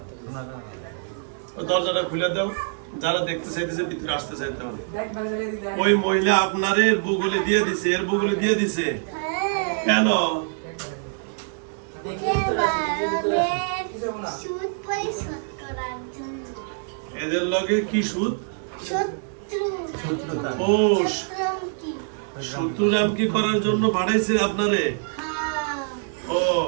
দরজাটা খুলে দাও, যারা দেখতে চাইতেছে ভিতরে আসতে চাইতে হবে। ওই মহিলা আপনার এর বগলে দিয়ে দিছে, এর বগলে দিয়ে দিছে কেন? এদের লগে কি সুদ? ও শত্রুরাম কি করার জন্য পাঠাইছে আপনারে? ও,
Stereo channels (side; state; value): left; silent; 62 dB below the other